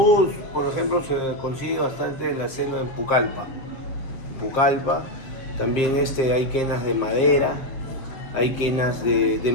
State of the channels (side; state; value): right; late; 7.5 ms